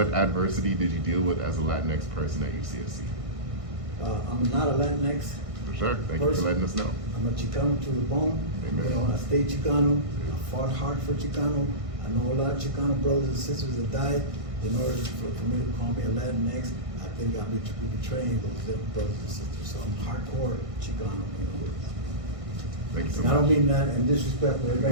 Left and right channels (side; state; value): left; late; 1.6 ms